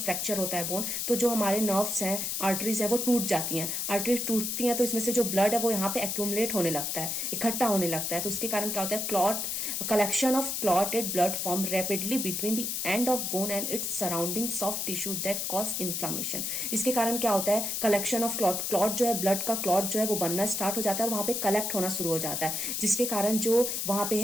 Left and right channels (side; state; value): left; noise; hiss, 1 dB below the sound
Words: होता है बोन, तो जो हमारे नर्व्स हैं, आर्टरीज है, वो टूट जाती हैं। आर्टरीज टूटती हैं तो इसमें से जो ब्लड है वो यहाँ पे एक्यूमुलेट होने लगता है, इकट्ठा होने लगता है। तो उसके कारण क्या होता है? Clot collection of clotted blood form rapidly between the end of bone and its surrounding soft tissue that cause inflammation. इसके कारण क्या होता है? कलेक्शन ऑफ क्लॉट जो है, ब्लड का क्लॉट जो है वो बनना स्टार्ट हो जाता है और वहां पे कलेक्ट होना शुरू हो जाता है, जिसके कारण जो वहां पे